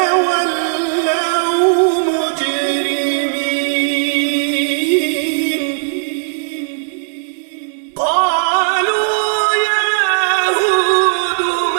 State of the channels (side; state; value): left; silent; digital silence